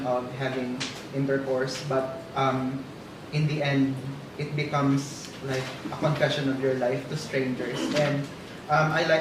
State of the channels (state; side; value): identical; both; correlation 1.00